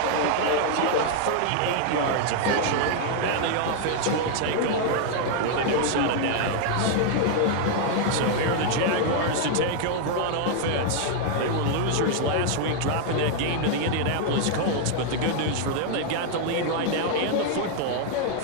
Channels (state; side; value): different; both; correlation 0.00